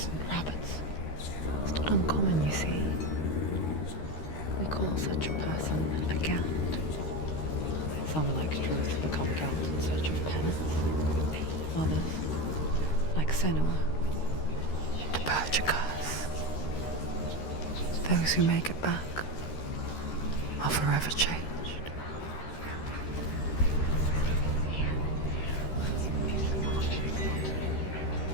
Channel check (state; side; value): late; right; 13 ms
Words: and rabbits. It's not uncommon, you see. We call such a person a Gelt. Some, like truth, become Gelt in search of penance. Others, like Senua, to purge a curse. Those who make it back are forever changed.